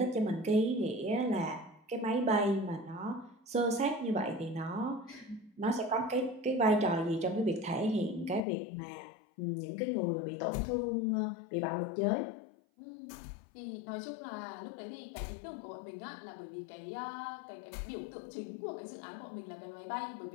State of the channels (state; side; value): drops out; right; at 8.4 s